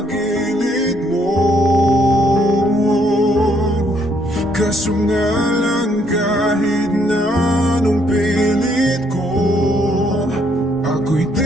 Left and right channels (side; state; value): both; normal; correlation 0.70